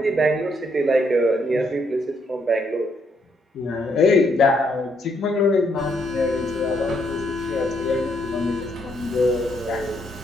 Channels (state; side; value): normal; both; correlation 0.73